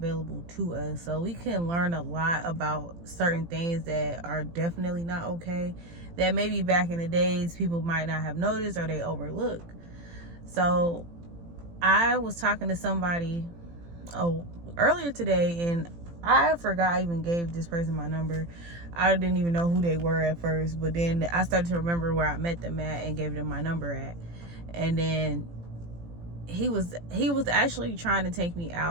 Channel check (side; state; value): left; late; 18 ms